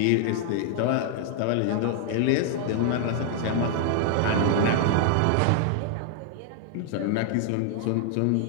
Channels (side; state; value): both; different; correlation 0.00